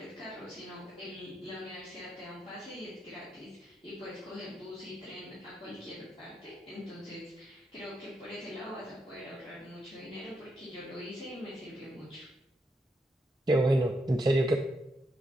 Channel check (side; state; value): both; normal; correlation 0.81